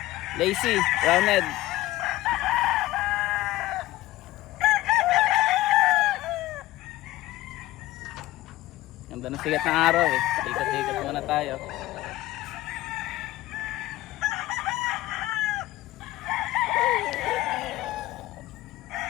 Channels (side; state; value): right; quieter; 16.8 dB